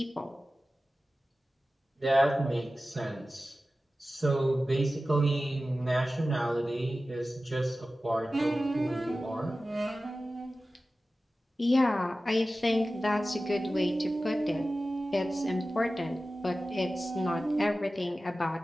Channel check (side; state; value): both; normal; correlation 0.95